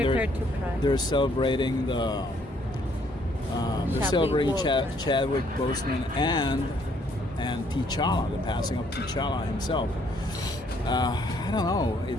to cry. they're celebrating Chadwick Boseman and T'Challa, the passing of T'Challa himself. I don't know.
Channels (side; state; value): both; normal; correlation 0.66